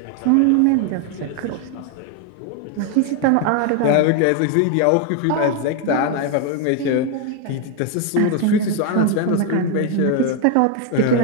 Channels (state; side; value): different; both; correlation 0.01